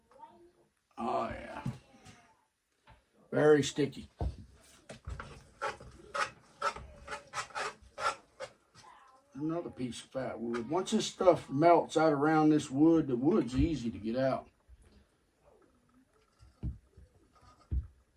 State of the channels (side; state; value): both; identical; correlation 1.00